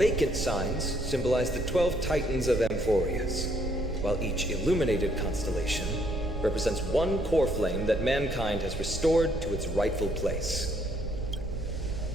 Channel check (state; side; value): noise; right; rumble, 7 dB below the sound